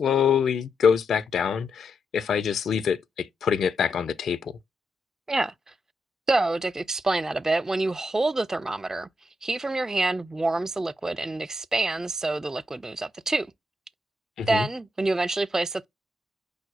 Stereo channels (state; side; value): normal; both; correlation 0.83